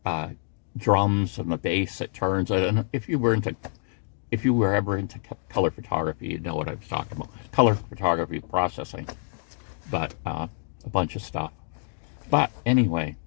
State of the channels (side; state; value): right; silent; digital silence